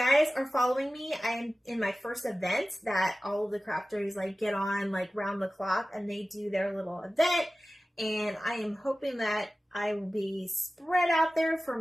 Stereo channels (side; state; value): both; normal; correlation 0.96